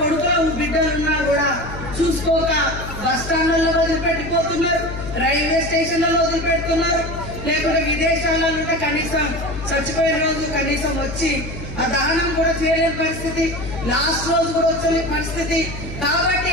బిడ్డలున్నా కూడా చూసుకోక బస్ స్టాండ్లలో వదిలిపెట్టిపోతున్నారు, రైల్వే స్టేషన్లలో వదిలిపెడుతున్నారు, లేకుంటే విదేశాలలో ఉంటే కనీసం చచ్చిపోయిన రోజు కనీసం వచ్చి ఆ దానం కూడా చేయలేని పరిస్థితి, లాస్ట్ రోజు కూడా వచ్చే పరిస్థితి. కాబట్టి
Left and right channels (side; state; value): left; noise; hum, 9 dB below the sound